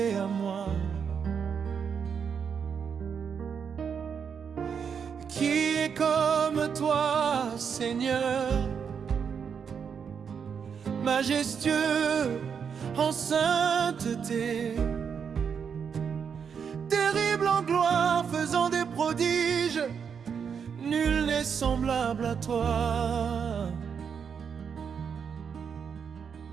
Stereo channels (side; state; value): left; quieter; 6.8 dB